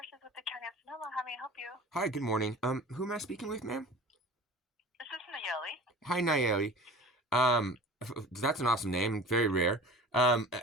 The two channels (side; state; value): both; normal; correlation 0.40